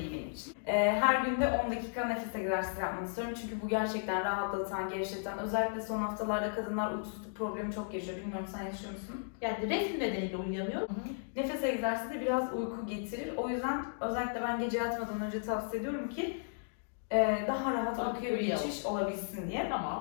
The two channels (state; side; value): silent; right; digital silence